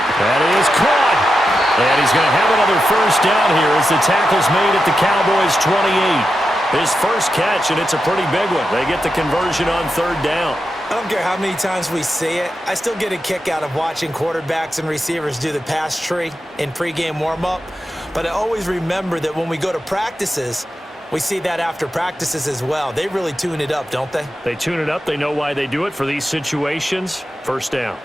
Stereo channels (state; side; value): normal; both; correlation 0.89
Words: That is caught. And he's going to have another first down here as the tackle's made at the Cowboys' 28. His first catch, and it's a pretty big one. They get the conversion on third down. I don't care how many times we see it. I still get a kick out of watching quarterbacks and receivers do the pass tree in pregame warm-up. But I always remember that when we go to practices, we see that after practices as well. They really tune it up, don't they? They tune it up. They know why they do it for these situations. First down.